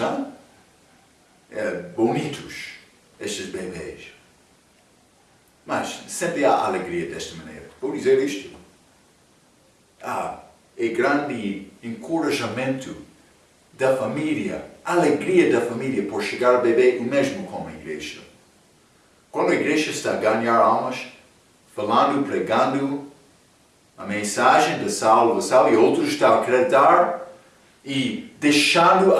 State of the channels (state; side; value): identical; both; correlation 1.00